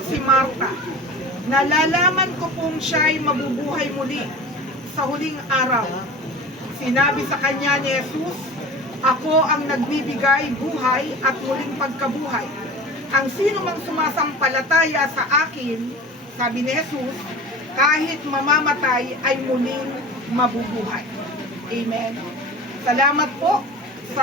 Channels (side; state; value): both; normal; correlation 0.36